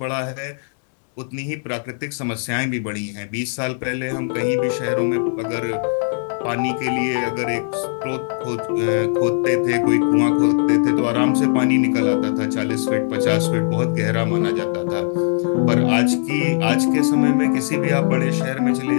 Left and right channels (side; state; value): right; silent; digital silence